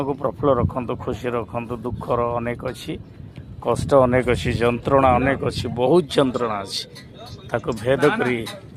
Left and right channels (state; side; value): identical; both; correlation 1.00